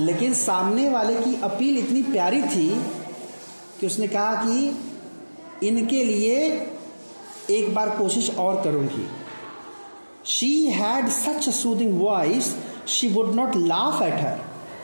सामने वाले की अपील इतनी प्यारी थी कि उसने कहा कि इनके लिए एक बार कोशिश और करूँगी। She had such a soothing voice she would not laugh at her.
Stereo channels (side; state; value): both; inverted; correlation -1.00